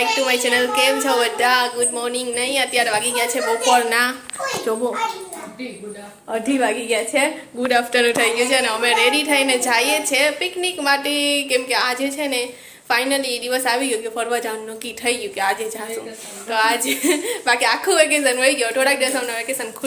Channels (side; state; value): both; identical; correlation 1.00